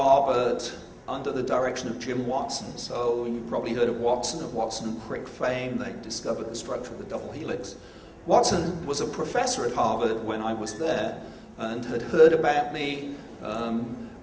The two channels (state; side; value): identical; both; correlation 1.00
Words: under the direction of Jim Watson. So you've probably heard of Watson and Crick fame. They discovered the structure of the double helix. Watson was a professor at Harvard when I was there and had heard about me.